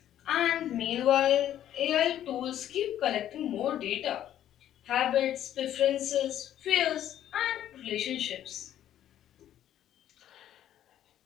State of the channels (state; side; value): quieter; right; 11.4 dB